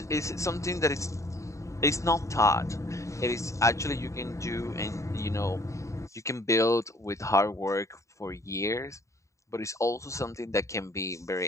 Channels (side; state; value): right; late; 0.15 ms